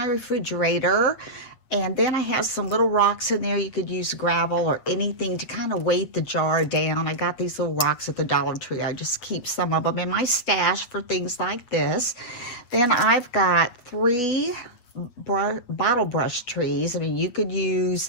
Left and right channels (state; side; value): late; right; 8.2 ms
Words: refrigerator. And then I have some little rocks in there. You could use gravel or anything to kind of weight the jar down. I got these little rocks at the Dollar Tree. I just keep some of them in my stash for things like this. Then I've got 3 bottle brush trees. I mean, you could use